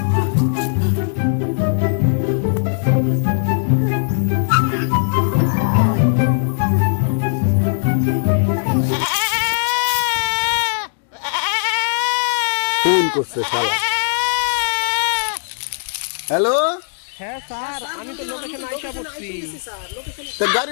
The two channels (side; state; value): right; silent; digital silence